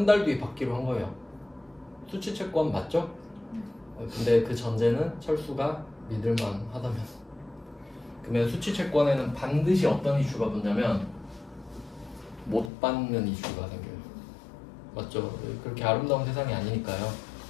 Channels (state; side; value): drops out; right; at 12.7 s